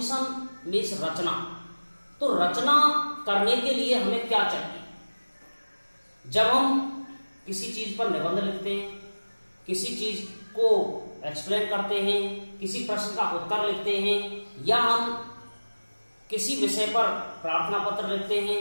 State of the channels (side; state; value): both; inverted; correlation -1.00